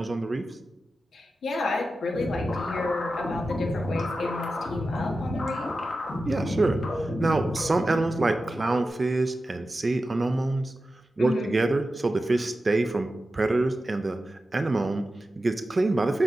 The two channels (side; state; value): both; normal; correlation 0.92